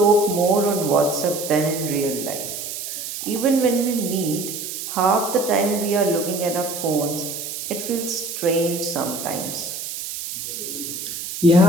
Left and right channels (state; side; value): noise; right; hiss, 7 dB below the sound